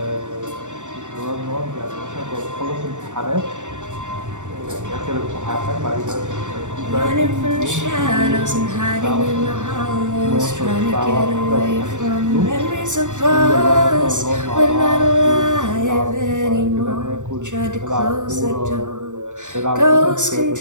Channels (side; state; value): left; late; 0.86 ms